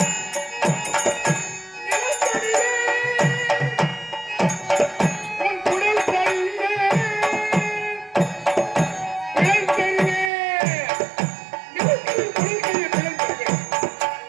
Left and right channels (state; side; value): drops out; left; at 10.3 s